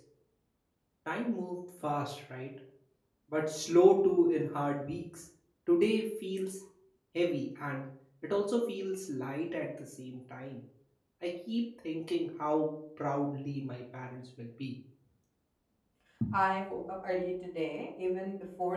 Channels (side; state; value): both; identical; correlation 1.00